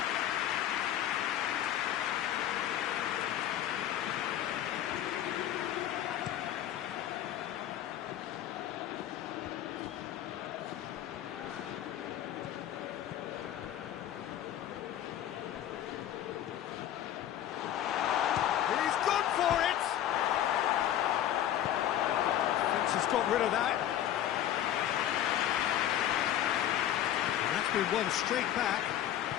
He's gone for it! Fence has got rid of that. And that's been won straight back.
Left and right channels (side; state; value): right; quieter; 11.6 dB